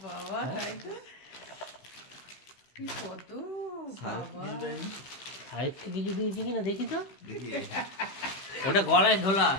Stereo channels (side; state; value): right; late; 15 ms